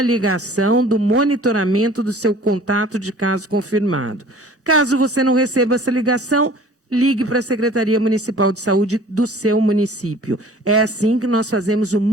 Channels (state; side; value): normal; both; correlation 0.48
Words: do monitoramento do seu contato de caso confirmado. Caso você não receba essa ligação, ligue para a Secretaria Municipal de Saúde do seu município. É assim que nós fazemos o